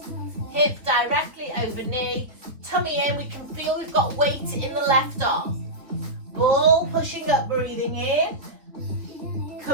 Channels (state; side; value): late; left; 3.6 ms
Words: Hip directly over knee. Tummy in, we can feel we've got weight in the left arm. Ball pushing up, breathing in,